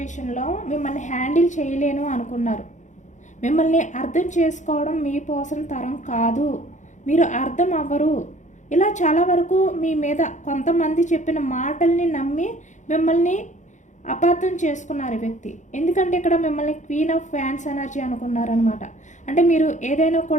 మిమ్మల్ని హ్యాండిల్ చేయలేను అనుకున్నారు. మిమ్మల్ని అర్థం చేసుకోవడం మీ పర్సన్ తరం కాదు, మీరు అర్థం అవ్వరు, ఇలా చాలా వరకు మీ మీద కొంతమంది చెప్పిన మాటల్ని నమ్మి మిమ్మల్ని అపార్థం చేసుకున్నారు ఈ వ్యక్తి. ఎందుకంటే ఇక్కడ మిమ్మల్ని క్వీన్ ఆఫ్ ఫ్యాన్స్ ఎనర్జీ అనుకున్నారనమాట. అంటే మీరు ఏదైనా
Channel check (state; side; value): late; right; 0.35 ms